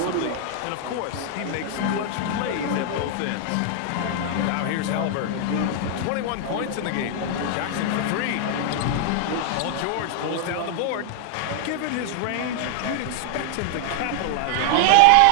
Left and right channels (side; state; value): both; different; correlation 0.00